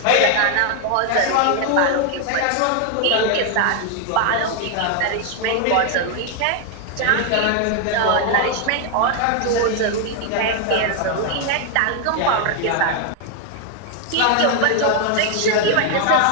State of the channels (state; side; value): different; both; correlation 0.00